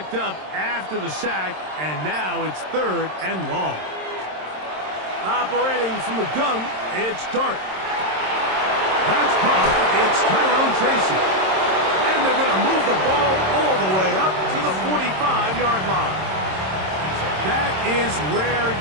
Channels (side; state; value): left; late; 26 ms